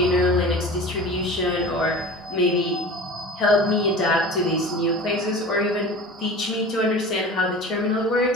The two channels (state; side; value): normal; both; correlation 0.36